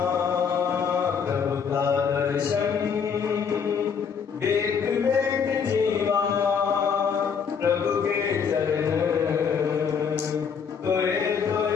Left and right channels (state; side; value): quieter; right; 6.5 dB